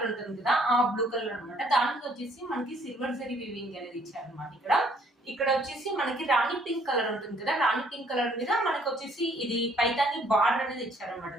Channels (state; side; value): normal; both; correlation 0.63